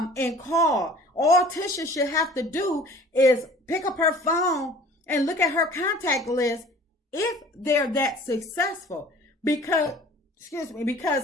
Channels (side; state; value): both; normal; correlation 0.47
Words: call. All Tisha should have to do is pick up her phone and look at her contact list if they're that successful. Because